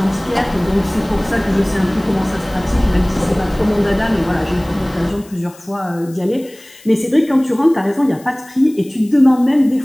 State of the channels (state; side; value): noise; left; hiss, 24 dB below the sound